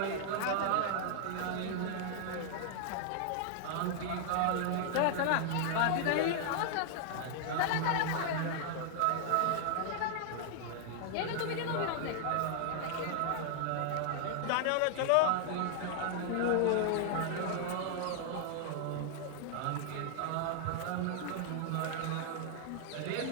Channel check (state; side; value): different; both; correlation 0.00